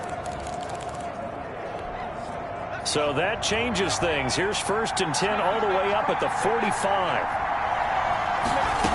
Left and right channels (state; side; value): identical; both; correlation 1.00